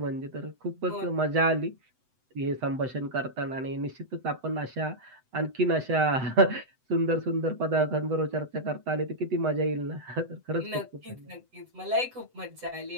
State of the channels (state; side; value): late; left; 7.9 ms